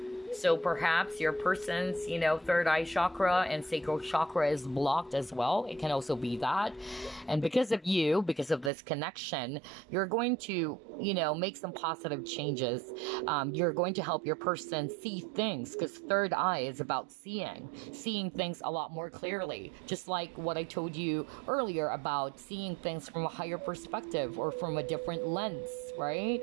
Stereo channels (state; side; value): drops out; left; at 8.7 s